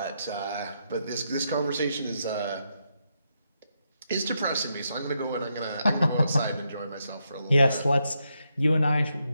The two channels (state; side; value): inverted; both; correlation -0.82